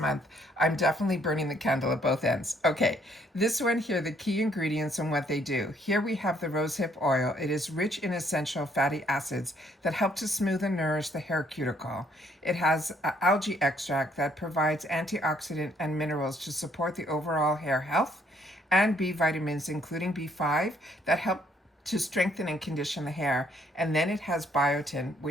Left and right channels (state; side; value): normal; both; correlation 0.67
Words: I'm definitely burning the candle at both ends. Okay, this one here, the key ingredients and what they do. Here we have the rosehip oil. It is rich in essential fatty acids that help to smooth and nourish the hair cuticle. It has algae extract that provides antioxidant and minerals to support the overall hair health, and B vitamins, including B5, that help to strengthen and condition the hair. And then it has biotin,